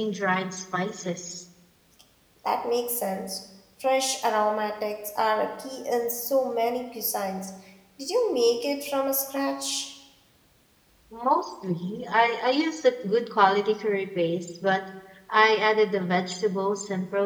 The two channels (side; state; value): both; identical; correlation 1.00